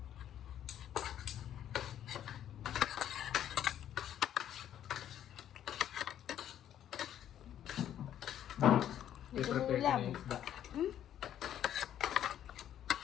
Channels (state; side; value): quieter; right; 10.8 dB